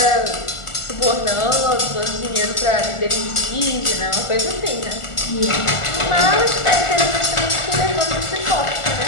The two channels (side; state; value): right; late; 1.4 ms